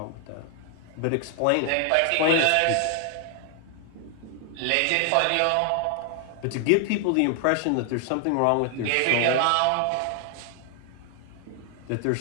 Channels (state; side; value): different; both; correlation 0.00